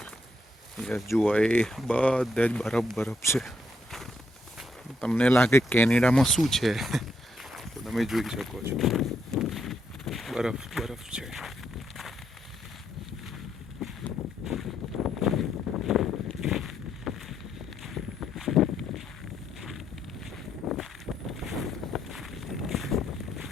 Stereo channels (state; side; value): normal; both; correlation 0.76